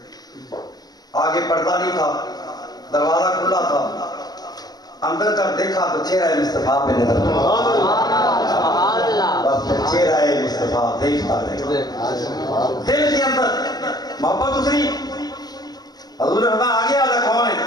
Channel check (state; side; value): late; right; 0.19 ms